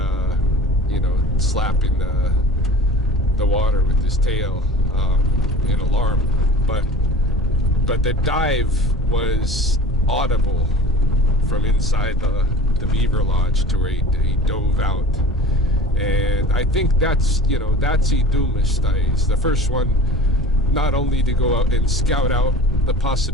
slapping the water with his tail in alarm. But the dive was audible from inside the beaver lodge to where he dove out. And I think that's Itumistai. It's the first one, not only to go out and scout out the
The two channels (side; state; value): both; normal; correlation 0.40